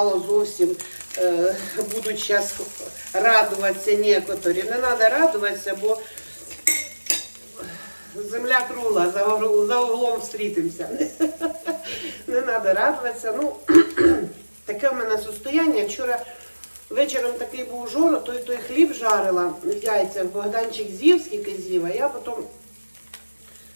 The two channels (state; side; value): inverted; both; correlation -1.00